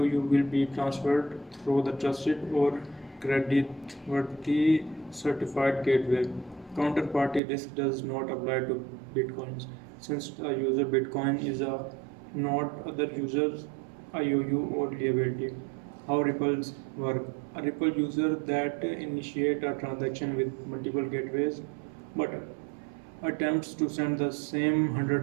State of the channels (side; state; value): left; drops out; at 7.4 s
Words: will be transferred through the trusted or creditworthy certified gateway. Counterparty risk does not apply to bitcoins, since a user bitcoin is a not other users IOU or liability. How ripples work. A ripple user that initiate a transaction with multiple gateways but attempts to send the same